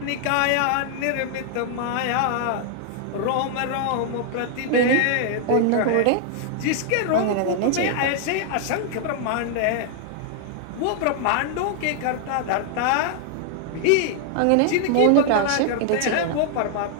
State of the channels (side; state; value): both; different; correlation 0.00